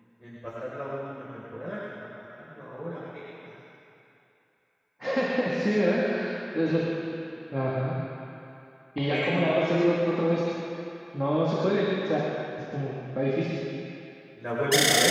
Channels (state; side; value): identical; both; correlation 1.00